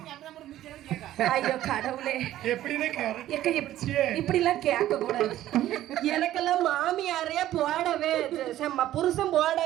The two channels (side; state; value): left; quieter; 13.5 dB